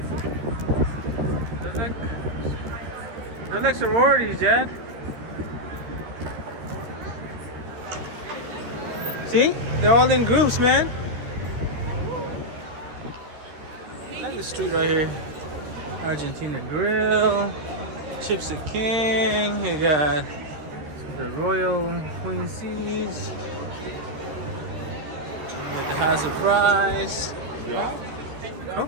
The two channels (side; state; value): left; late; 13 ms